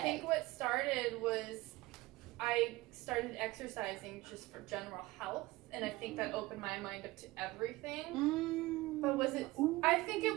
think what started was I started exercising just for general health, and I think that opened my mind up to everything. But was it? I think it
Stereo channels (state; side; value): quieter; left; 20.0 dB